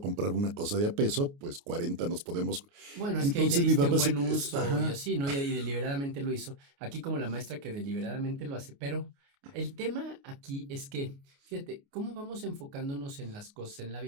comprar una cosa de a peso, pues 40 nos podemos. Bueno, es que ahí le Entonces mi diste un papá buen uso y ajá, así, ¿no? Y deliberadamente lo hizo. Aquí como la maestra que deliberadamente lo hace. Pero el tema aquí es que, fíjate, ¿cómo vamos enfocándonos en las cosas en la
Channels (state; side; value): late; left; 29 ms